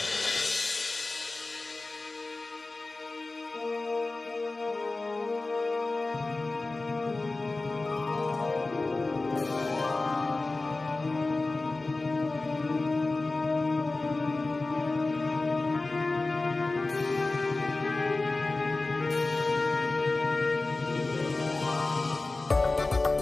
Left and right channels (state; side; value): quieter; right; 3.3 dB